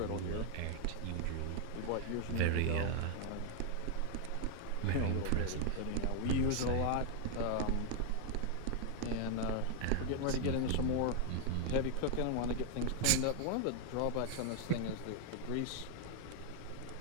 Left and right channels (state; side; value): different; both; correlation 0.00